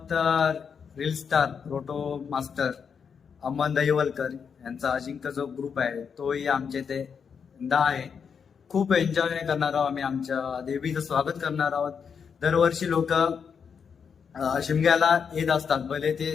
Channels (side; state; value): right; quieter; 6.6 dB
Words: रील स्टार रोटो मास्टर अमन दहिवलकर यांचा अजिंक्य जो ग्रुप आहे तोही आमच्या इथे आहे. खूप एन्जॉय करणार आहोत आम्ही. आमच्या देवीचं स्वागत करणार आहोत. दरवर्षी लोक शिमग्याला येत असतात, भले ते